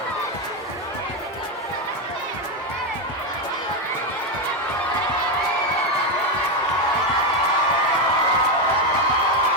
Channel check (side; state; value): both; normal; correlation 0.08